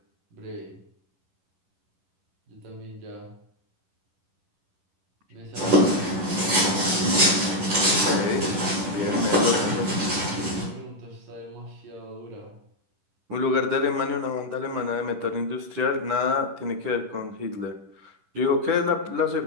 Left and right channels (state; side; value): late; left; 11 ms